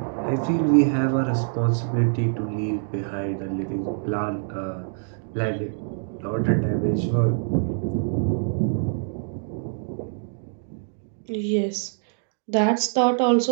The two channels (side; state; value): left; silent; digital silence